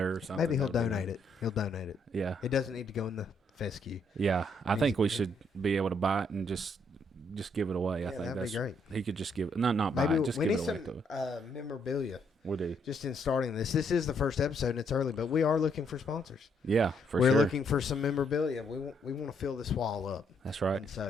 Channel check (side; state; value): both; normal; correlation 0.72